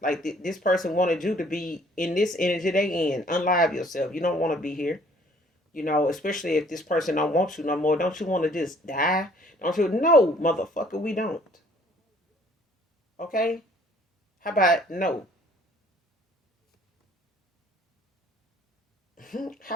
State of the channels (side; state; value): both; normal; correlation 0.59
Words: Like this person wanted you to be in this energy they in. Unlive yourself. You don't want to be here. Especially if this person don't want you no more. Don't you want to just die? Don't you? No, motherfucker, we don't. Okay? How about no?